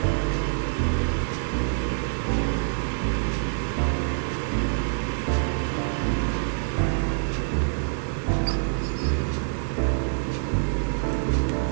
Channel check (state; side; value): silent; left; digital silence